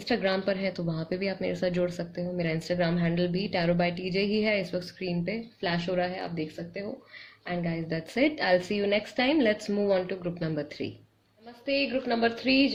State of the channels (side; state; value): both; identical; correlation 1.00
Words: पर है तो वहाँ पे भी आप मेरे साथ जोड़ सकते हो। मेरा इंस्टाग्राम हैंडल भी टैरो बाय टीजे ही है, इस वक्त स्क्रीन पे फ्लैश हो रहा है, आप देख सकते हो। And guys that's it, I will see you next time. Let's move on to group number 3। नमस्ते ग्रुप नंबर 3